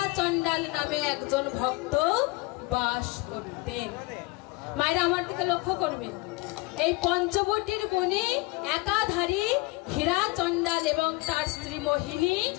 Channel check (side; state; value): right; quieter; 23.4 dB